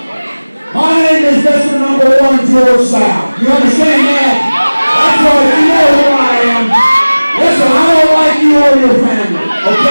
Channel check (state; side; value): inverted; both; correlation -1.00